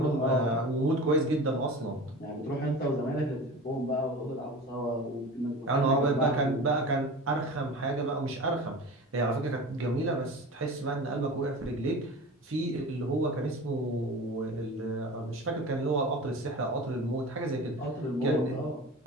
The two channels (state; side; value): normal; both; correlation 0.34